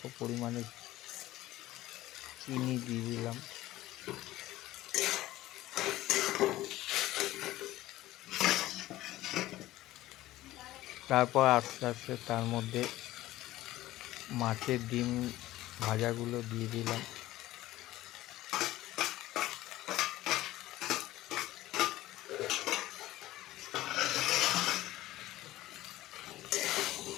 পরিমাণে চিনি দিয়ে দিলাম। তারপর আস্তে আস্তে তার মধ্যে মাছের ডিম ভাজাগুলো দিয়ে দিলাম।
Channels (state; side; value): quieter; right; 16.0 dB